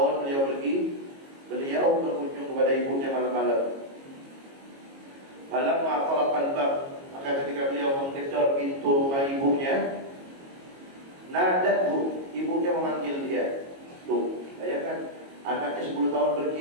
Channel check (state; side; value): late; left; 22 ms